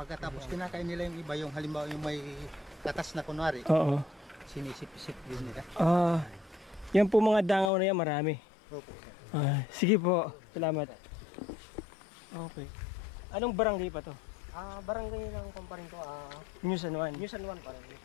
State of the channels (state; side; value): drops out; right; at 7.7 s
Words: kinakain nila yung iba, yung halimbawa yung may katas na kunwari. Oo. Sinisip-sip din nila. Yan po mga dangaw na yan, marami. Opo. Sige po, salamat. Okay. Anong barangay pa to? Barangay ng kumparin ko, New San Juan. New San Juan pa rin.